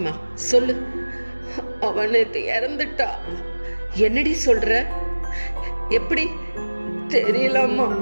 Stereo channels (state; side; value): inverted; both; correlation -1.00